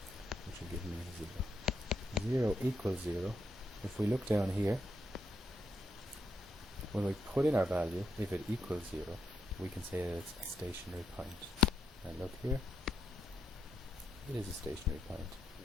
which will give me 0. 0 equals 0. If we look down here, when we put in our value, if it equals 0, we can say that it's a stationary point. And look here, it is a stationary point.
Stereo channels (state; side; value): normal; both; correlation 0.79